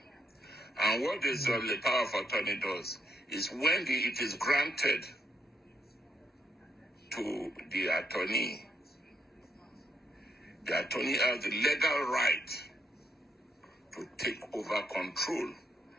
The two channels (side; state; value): both; normal; correlation 0.78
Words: And what this the power of attorney does is when it is granted to the attorney has the legal right to take over control